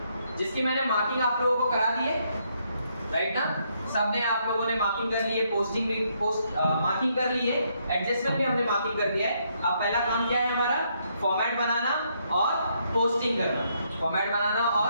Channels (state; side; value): inverted; both; correlation -0.74